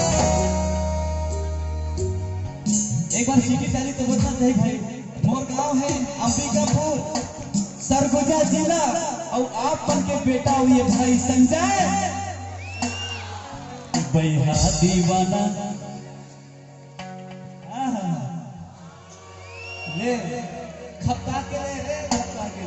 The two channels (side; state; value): both; identical; correlation 1.00